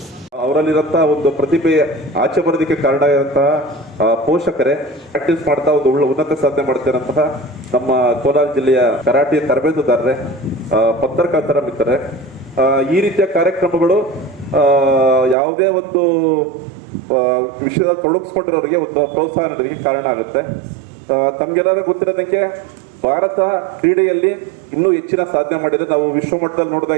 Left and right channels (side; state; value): left; drops out; at 15.4 s